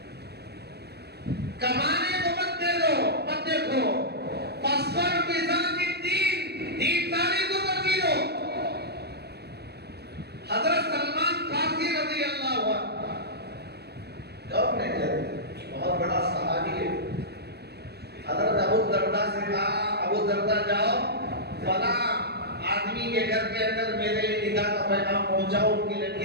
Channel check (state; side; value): late; left; 0.48 ms